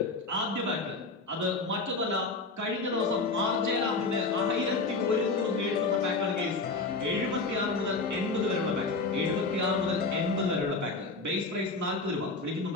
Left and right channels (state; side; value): quieter; right; 3.7 dB